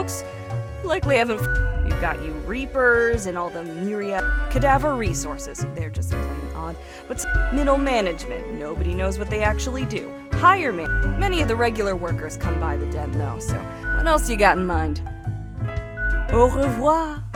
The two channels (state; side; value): identical; both; correlation 1.00